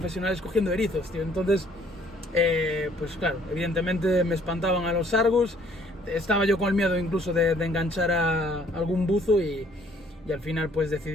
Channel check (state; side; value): normal; both; correlation 0.61